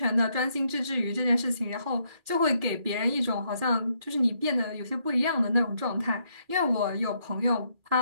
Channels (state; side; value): late; left; 2.4 ms